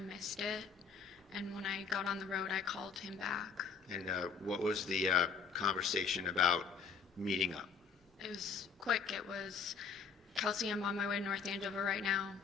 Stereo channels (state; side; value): quieter; right; 5.9 dB